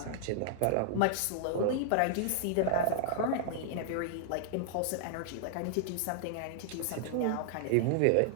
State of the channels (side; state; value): both; different; correlation -0.01